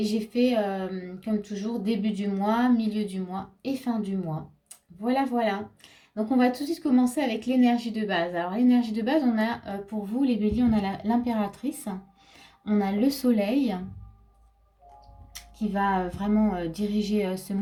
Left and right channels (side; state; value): both; identical; correlation 1.00